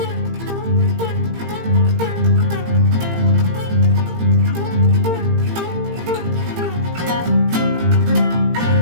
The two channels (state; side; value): late; left; 18 ms